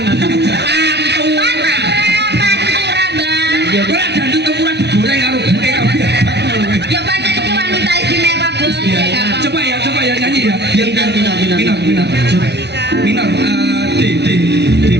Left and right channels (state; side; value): late; left; 0.49 ms